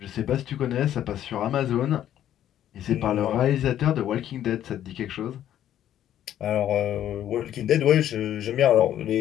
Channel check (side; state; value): right; quieter; 11.3 dB